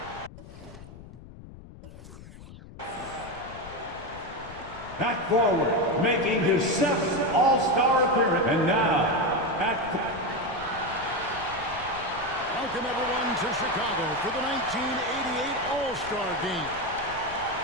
At forward, making his 7th All-Star appearance. And now, Welcome everyone to Chicago for the 1988 All-Star Game.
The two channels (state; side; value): noise; left; rumble, 16 dB below the sound